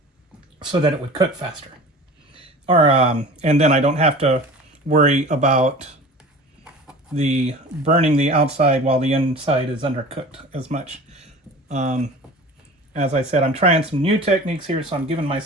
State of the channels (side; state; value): both; normal; correlation 0.39